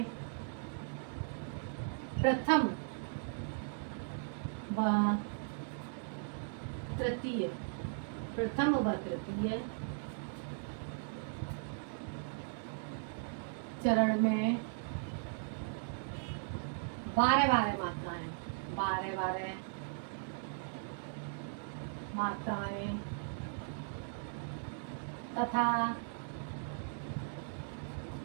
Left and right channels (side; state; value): left; silent; digital silence